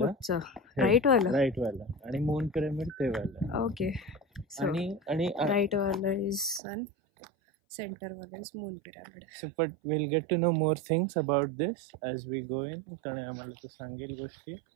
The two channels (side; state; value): left; drops out; at 6.6 s